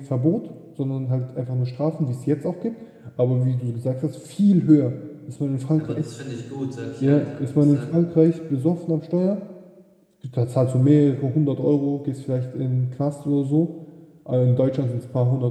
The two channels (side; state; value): both; identical; correlation 1.00